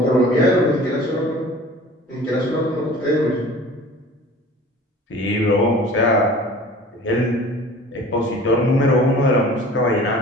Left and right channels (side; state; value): both; normal; correlation 0.44